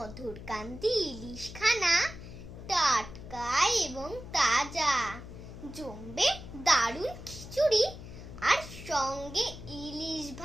কান্তি ইলিশখানা টাটকা এবং তাজা, জমবে দারুণ খিচুড়ি আর সঙ্গে ইলিশ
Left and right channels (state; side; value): noise; left; hum, 13 dB below the sound